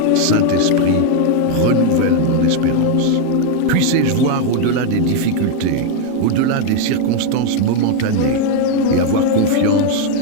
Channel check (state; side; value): different; both; correlation 0.00